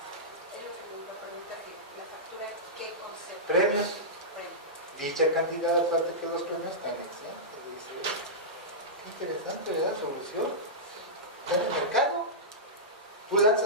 Premios. Dicha cantidad, aparte que los premios están exentos. Qué interesante, ¿verdad? Solución. Está en el mercado. Tú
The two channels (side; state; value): both; normal; correlation -0.14